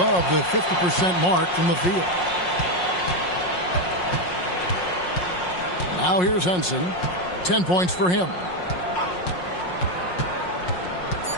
the 50% mark from the field. Now here's Henson. 10 points for him.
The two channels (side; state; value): right; late; 5.5 ms